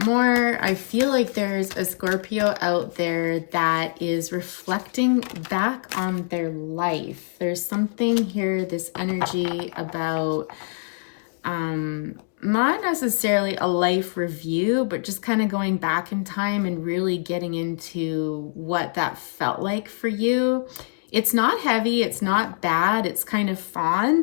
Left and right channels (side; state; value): right; silent; digital silence